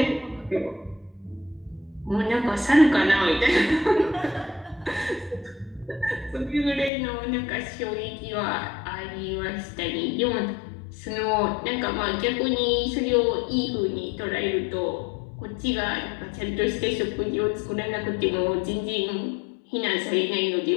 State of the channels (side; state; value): right; drops out; at 6.9 s